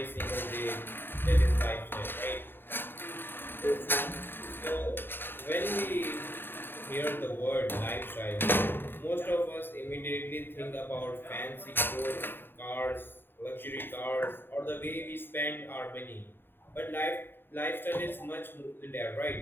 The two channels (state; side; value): late; right; 0.099 ms